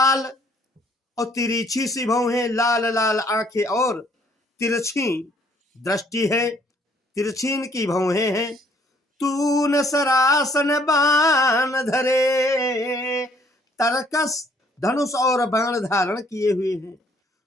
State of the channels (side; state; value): both; normal; correlation 0.63